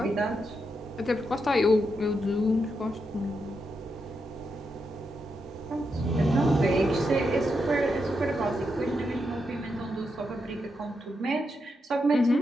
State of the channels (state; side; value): normal; both; correlation 0.84